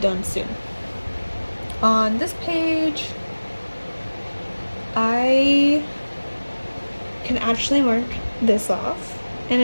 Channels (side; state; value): both; inverted; correlation -1.00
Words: soon. On this page, I can actually mark this off, and